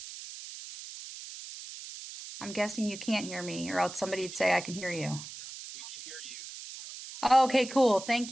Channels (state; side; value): noise; right; hiss, 12 dB below the sound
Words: good morning. Good morning. I'm guessing you can't hear me, or else somebody We would can- say I can hear you. We can hear you. Turn on your mic. Oh, okay, cool. Thank